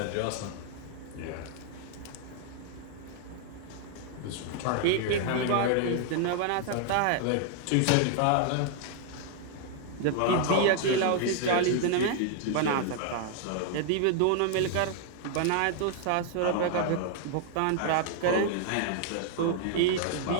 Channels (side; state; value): both; different; correlation 0.00